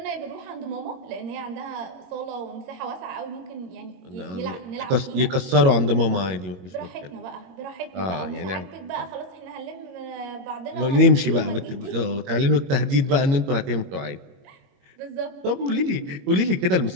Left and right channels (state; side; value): late; left; 22 ms